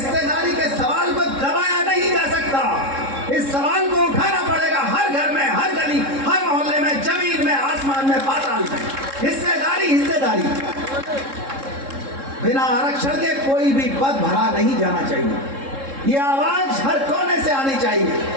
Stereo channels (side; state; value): left; late; 3.7 ms